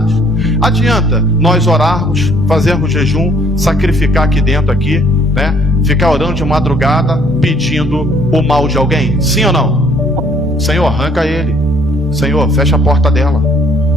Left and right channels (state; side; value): normal; both; correlation 0.61